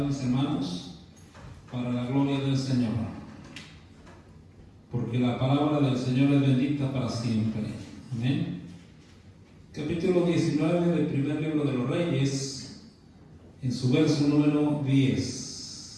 mis hermanos, para la gloria del Señor. Porque la palabra del Señor es bendita para siempre. Amén. Capítulo 19 del primer libro de los Reyes, en su verso número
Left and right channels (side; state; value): both; identical; correlation 1.00